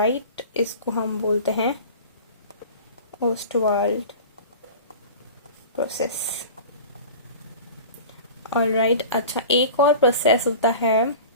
इसको हम बोलते हैं ओस्टवाल्ड प्रोसेस. All right. अच्छा, एक और प्रोसेस होता है,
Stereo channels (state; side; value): inverted; both; correlation -0.37